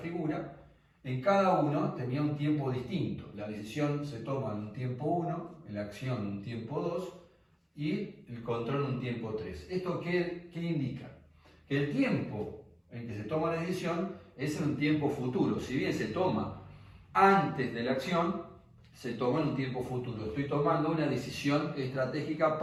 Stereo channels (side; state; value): both; identical; correlation 1.00